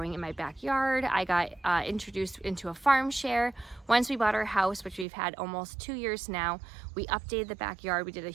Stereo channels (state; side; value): drops out; left; at 5.1 s